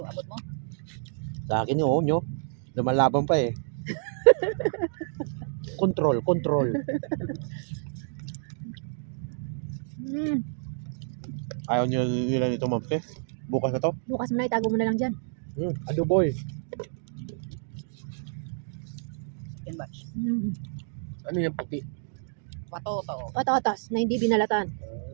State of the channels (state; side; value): silent; left; digital silence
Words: mo. Sa akin yung nyo. Lumalaban pa eh. Control. Ayaw nila nito, Mampe. Bukas na to. Bukas mo na, itago mo na lang dyan. Adoboy. Yan batch. Ano yung puti? Patoto. Patatas na hindi binalatan.